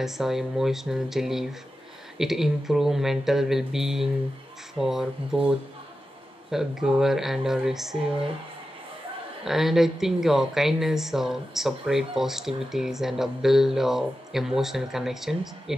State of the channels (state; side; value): normal; both; correlation 0.92